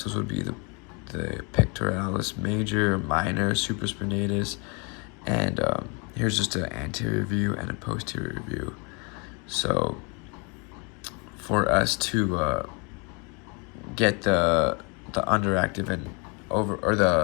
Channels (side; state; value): right; quieter; 32.3 dB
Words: would be the pectoralis major, minor, supraspinatus, and here's just an anterior view and a posterior view. So for us to get the underactive and